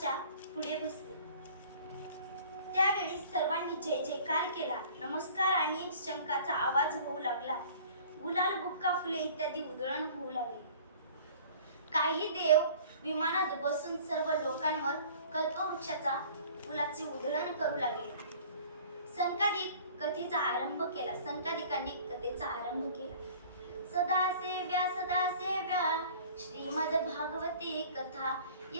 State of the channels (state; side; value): inverted; both; correlation -0.48